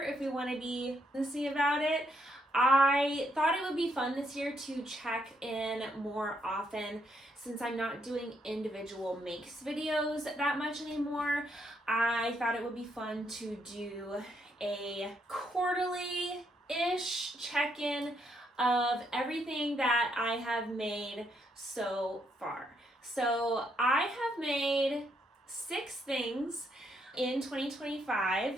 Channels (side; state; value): both; normal; correlation 0.75